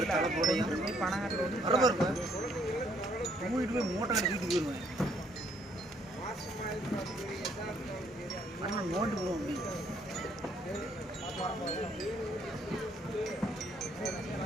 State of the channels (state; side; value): normal; both; correlation 0.67